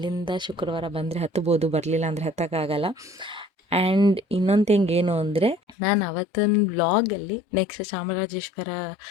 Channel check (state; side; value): drops out; right; at 5.8 s